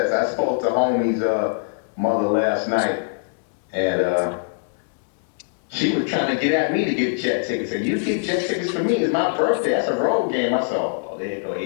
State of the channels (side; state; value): right; silent; 64 dB below the other